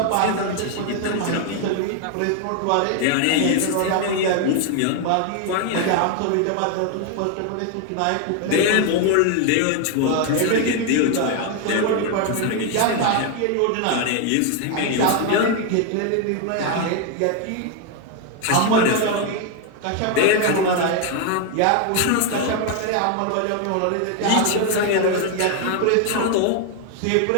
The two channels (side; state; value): both; different; correlation 0.01